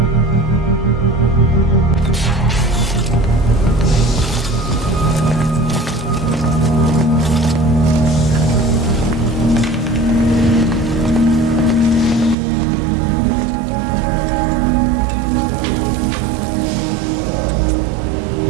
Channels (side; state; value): left; drops out; at 12.4 s